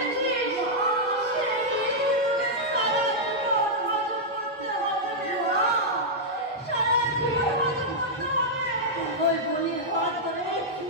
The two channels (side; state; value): both; normal; correlation -0.06